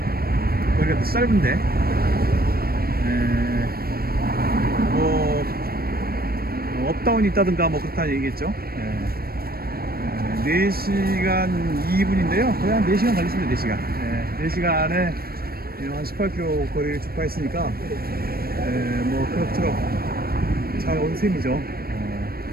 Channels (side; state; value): left; late; 0.44 ms